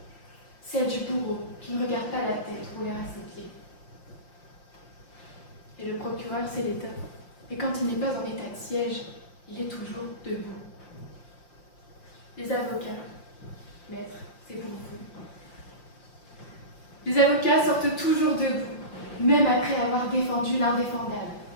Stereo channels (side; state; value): right; late; 5.7 ms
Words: celle du bourreau qui ne regarde pas la tête rouler à ses pieds. Et le procureur, c'est l'État. Et quand il n'est pas en état de siège, il est toujours debout. Les avocats, maître, c'est pour vous. Les avocats sortent toujours debout, même après avoir défendu l'indéfendable.